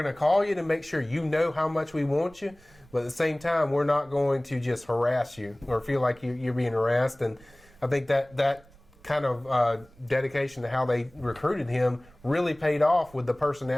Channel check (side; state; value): right; noise; rumble, 26 dB below the sound